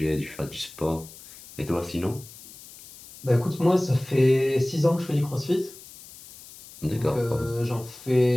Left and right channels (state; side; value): noise; left; hiss, 19 dB below the sound